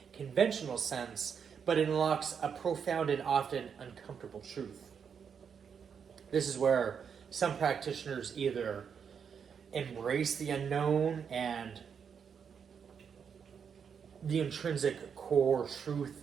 conventional sense, but it unlocks a profound and often uncomfortable truth. This is where some practitioners either embrace the unknown and the intrinsic core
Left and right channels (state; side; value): quieter; left; 7.0 dB